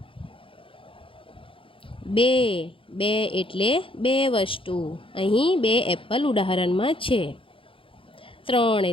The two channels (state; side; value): late; right; 0.26 ms